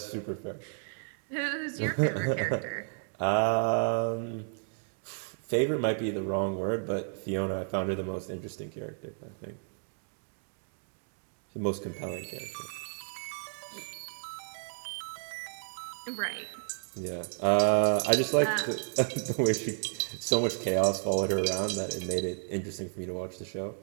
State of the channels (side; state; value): left; silent; digital silence